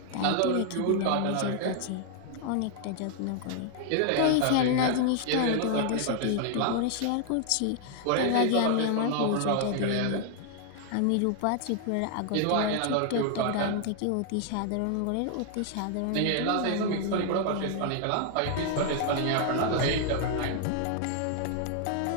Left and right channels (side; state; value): both; different; correlation 0.00